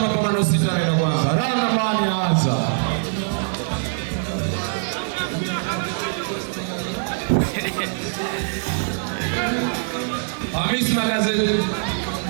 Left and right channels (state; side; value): silent; left; digital silence